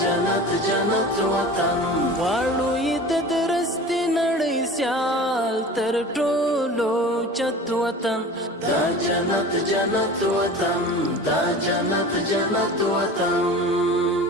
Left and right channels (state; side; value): normal; both; correlation 0.37